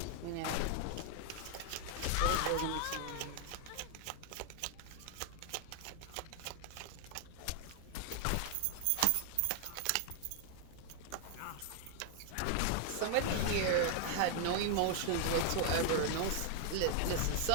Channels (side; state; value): both; different; correlation 0.00